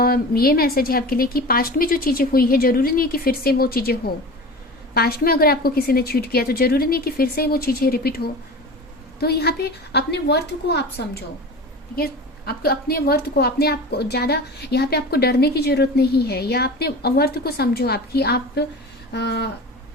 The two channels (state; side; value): normal; both; correlation 0.33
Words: ये मैसेज है आपके लिए कि पास्ट में जो चीज़ें हुई है जरूरी नहीं है कि फिर से वो चीज़ें हो। पास्ट में अगर आपको किसी ने चीट किया तो जरूरी नहीं कि फिर से वो चीज़ें रिपीट हो। तो यहाँ पे अपने वर्थ को आप समझो, ठीक है। आपको अपने वर्थ को, अपने आप को ज़्यादा यहाँ पे आपको डरने की जरूरत नहीं है, या अपने वर्थ को समझो आपकी आप